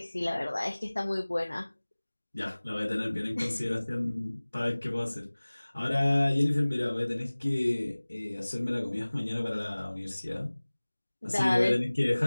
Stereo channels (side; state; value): both; inverted; correlation -1.00